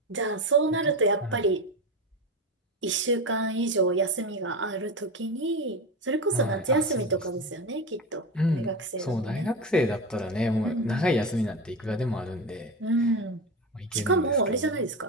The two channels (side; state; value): both; normal; correlation 0.20